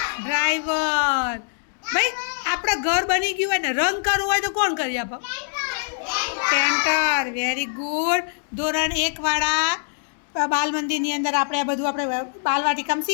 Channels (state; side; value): silent; right; digital silence